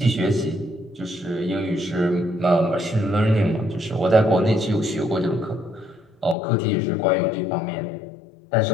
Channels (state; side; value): drops out; right; at 6.4 s